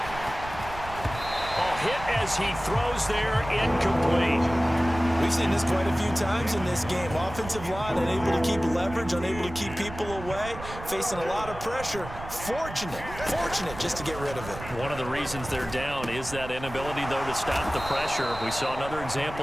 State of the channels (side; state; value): right; noise; rumble, 12 dB below the sound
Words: Oh, hit as he throws there, incomplete. We've seen this quite a few times in this game. Offensive line unable to keep leverage, unable to keep people away, facing a lot of pressure. Fortunate just to get rid of it. One of the reasons they're down is that inability, though, to stop the pressure. We saw another